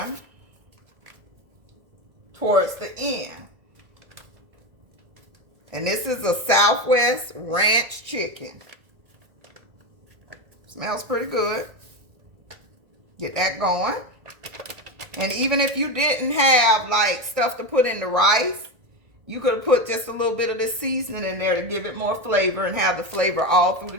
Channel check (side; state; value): left; late; 1.8 ms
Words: towards the end. And this is a Southwest Ranch chicken. Smells pretty good. Get that going. And even if you didn't have like stuff to put in the rice, you could have put just a little bit of this seasoning in there to give it more flavor and have the flavor all through